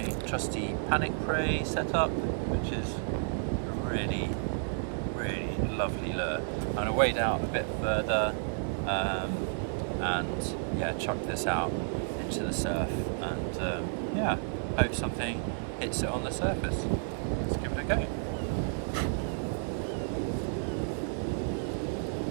trusty Panic Prey set up, which is a really, really lovely lure. I'm going to wade out a bit further and yeah, chuck this out into the surf and yeah, hope something hits it on the surface. Let's give it a go.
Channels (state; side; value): silent; left; digital silence